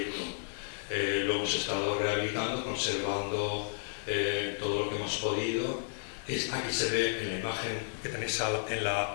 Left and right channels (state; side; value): silent; right; digital silence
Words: Lo hemos estado rehabilitando, conservando todo lo que hemos podido. Aquí se ve en la imagen que tenéis